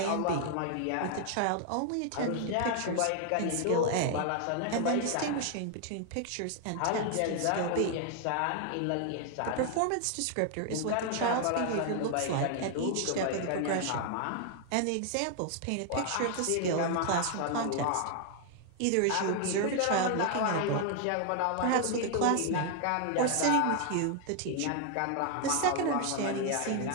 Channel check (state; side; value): different; both; correlation 0.00